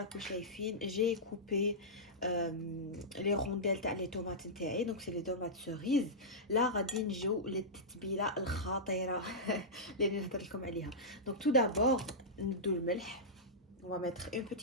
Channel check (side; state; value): both; normal; correlation -0.13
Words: la couche fine, j'ai coupé les rondelles تاع les tomates نتاعي. Donc c'est les tomates cerises. Là غادي نجيو للتتبيله الخطيره اللي نهضر لكم عليها. Donc tout d'abord ندو الملح. On va mettre une